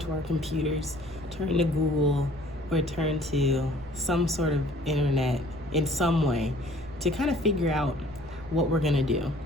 our computers, turn to Google, or turn to some sort of internet in some way to kind of figure out what we're gonna do.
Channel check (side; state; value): both; normal; correlation 0.54